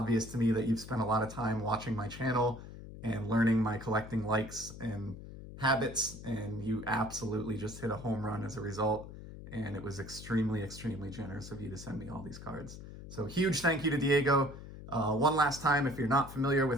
to me that you've spent a lot of time watching my channel and learning my collecting likes and habits, and you absolutely just hit a home run as a result. And it was extremely, extremely generous of you to send me all these cards. So huge thank you to Diego. One last time, if you're not familiar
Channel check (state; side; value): noise; left; hum, 13 dB below the sound